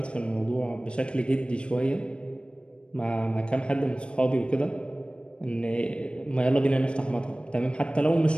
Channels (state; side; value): late; right; 0.057 ms